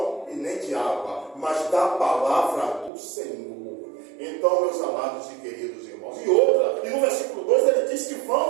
e nem de água, mas da palavra do Senhor. Então, meus amados e queridos irmãos, e no versículo 2 ele diz que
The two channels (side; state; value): left; drops out; at 2.9 s